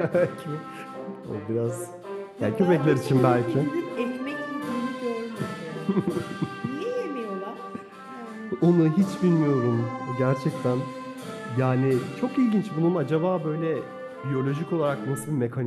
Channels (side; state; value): both; identical; correlation 1.00